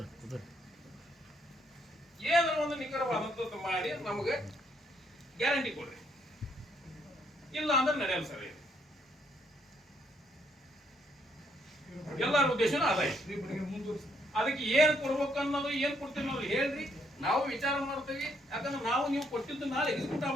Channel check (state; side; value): normal; both; correlation 0.71